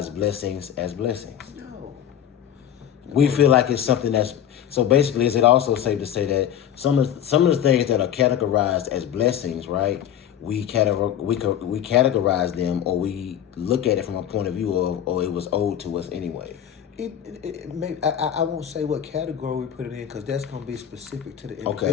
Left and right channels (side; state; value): right; quieter; 10.0 dB